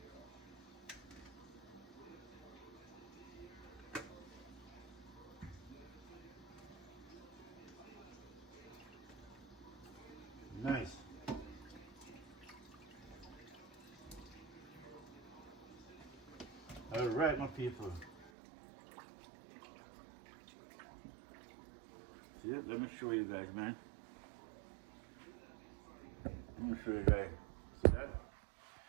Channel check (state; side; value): drops out; left; at 18.3 s